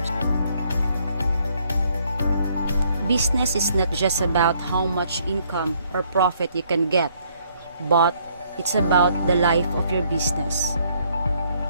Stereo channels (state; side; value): inverted; both; correlation -0.67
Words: Business is not just about how much income or profit you can get, but it's about the life of your business.